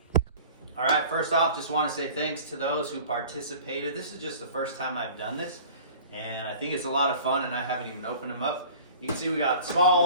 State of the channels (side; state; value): both; inverted; correlation -0.44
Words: All right, first off, just wanna say thanks to those who participated. This is just the first time I've done this, and I think it's a lot of fun, and I haven't even opened them up. You can see we got small